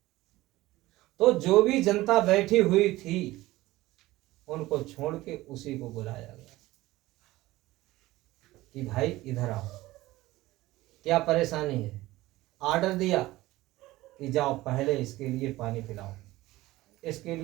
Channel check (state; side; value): quieter; left; 17.9 dB